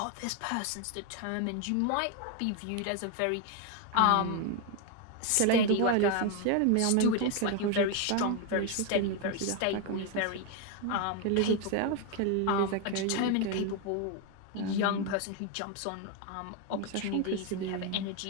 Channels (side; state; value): both; different; correlation 0.01